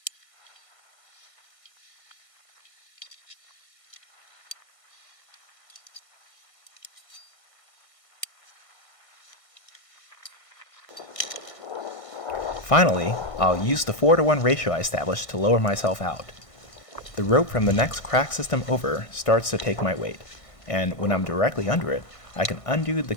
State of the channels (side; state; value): right; late; 1.5 ms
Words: Finally, I'll use the 4-to-1 ratio I established to lower myself out. The rope from the next crack system over starts to take my weight, and when I'm directly under it, I can undo the